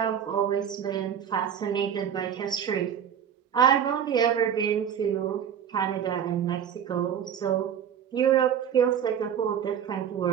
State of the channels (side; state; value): left; quieter; 8.6 dB